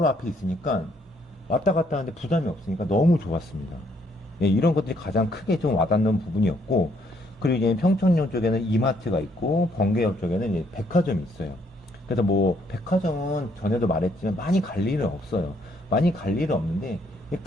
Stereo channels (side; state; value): both; normal; correlation 0.69